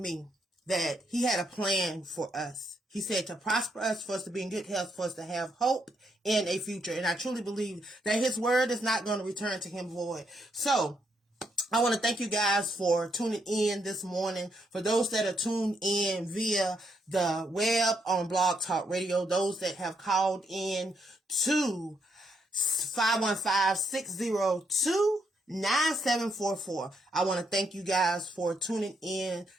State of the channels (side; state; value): both; normal; correlation 0.77